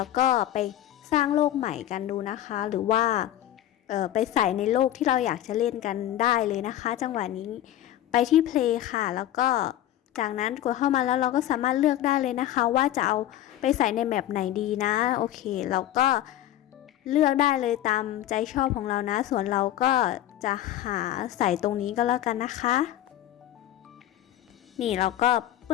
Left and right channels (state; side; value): quieter; right; 12.7 dB